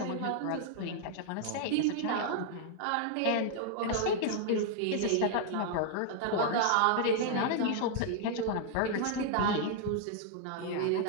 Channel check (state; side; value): different; both; correlation 0.00